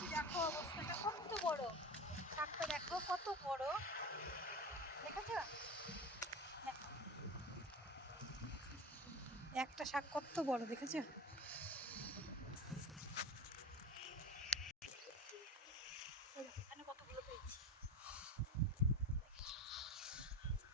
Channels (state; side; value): normal; both; correlation 0.30